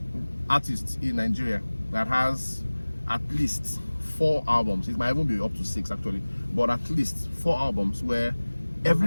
artist in Nigeria that has at least 4 albums. It might even be up to 6 actually, but at least 4 albums where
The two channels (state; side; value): inverted; both; correlation -1.00